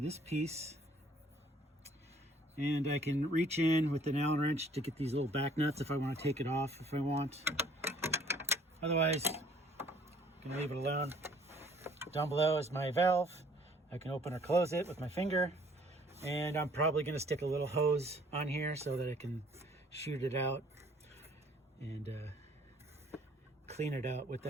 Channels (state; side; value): normal; both; correlation 0.58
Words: piece. And I can reach in with an Allen wrench to get these little back nuts if I want to take it off if I want. Otherwise, I'm going to leave it alone. Down below is my valve. I can open or close it with my finger. And I'm probably going to stick a little hose on here so that I can shoot it out and clean it out